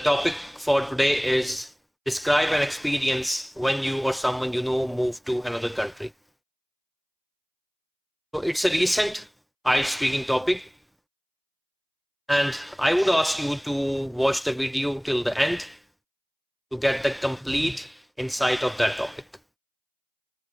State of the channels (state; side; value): identical; both; correlation 1.00